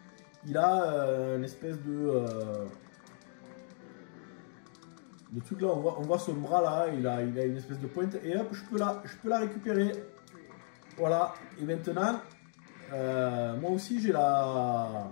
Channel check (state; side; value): silent; right; 55 dB below the other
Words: il a une espèce de truc là, on voit son bras là, il a une espèce de pointe et hop, je peux la récupérer. Voilà, et maintenant, moi aussi je